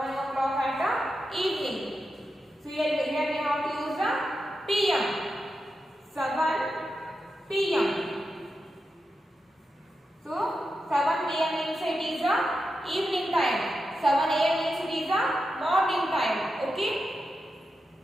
o'clock at evening. So here we have to use PM. 7 PM. So 7 PM means it is evening time. 7 AM means it is morning time. Okay.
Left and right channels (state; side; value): normal; both; correlation 0.89